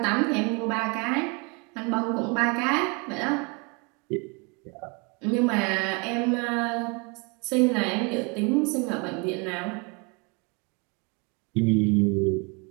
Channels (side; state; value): left; quieter; 31.5 dB